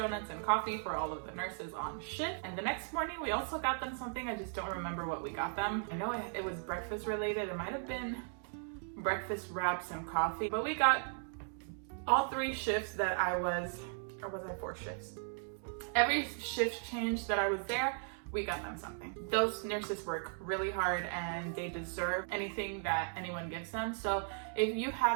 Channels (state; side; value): silent; left; 53 dB below the other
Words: and coffee for all of the nurses on shift. And the next morning, we also got them something. I just don't remember what we got them. I know it was breakfast related. It might have been breakfast wraps and coffee. But we got all 3 shifts that I was, or was I 4 shifts? Every shift change that I was there, we got them something. Those nurses work really hard and they deserve anything that anyone gives them. So if you